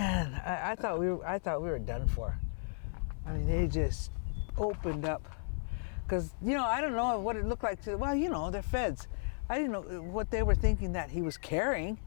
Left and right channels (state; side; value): silent; right; 55 dB below the other